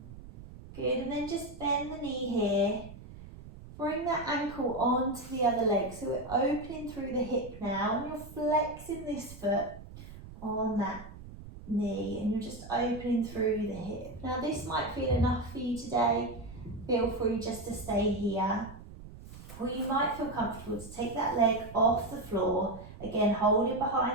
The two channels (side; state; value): right; noise; rumble, 15 dB below the sound